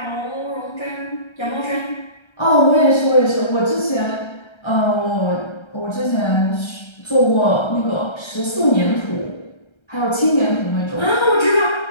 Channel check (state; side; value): late; right; 1.3 ms